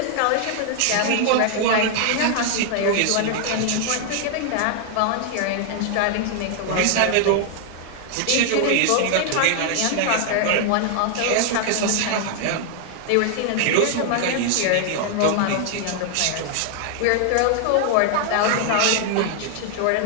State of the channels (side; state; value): both; different; correlation 0.00